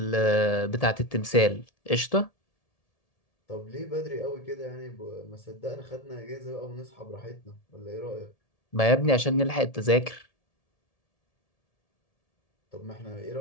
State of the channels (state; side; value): late; right; 1.7 ms